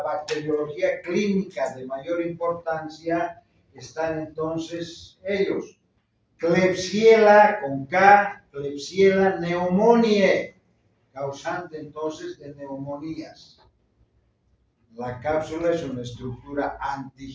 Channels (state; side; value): identical; both; correlation 1.00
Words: bacteriología clínica de mayor importancia están entonces ellos. Klebsiella con K, Klebsiella pneumoniae, causante entonces de neumonías. La cápsula es una estructura